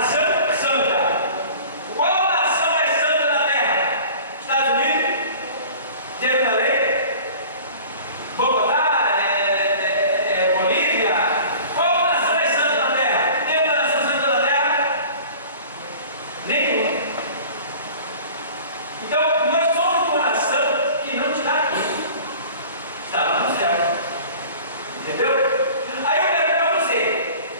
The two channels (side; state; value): both; inverted; correlation -0.43